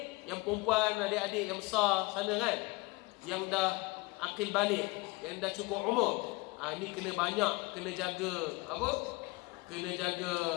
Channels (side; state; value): right; quieter; 24.2 dB